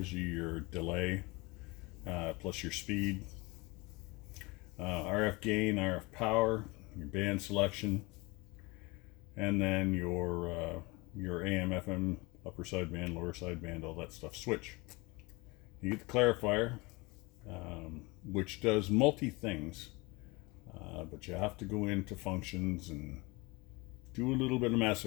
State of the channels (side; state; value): right; quieter; 24.9 dB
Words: you your delay plus your speed. RF gain, RF power, your band selection, and then your AM, FM, upper sideband, lower sideband, all that stuff switch. You get the clarifier, which does multi things, but you have to go into functions and do a little bit of